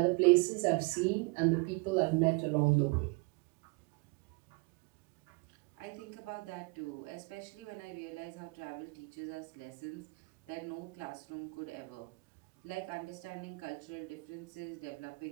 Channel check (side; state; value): left; quieter; 28.4 dB